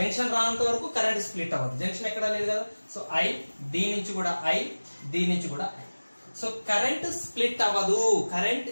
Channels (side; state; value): both; inverted; correlation -1.00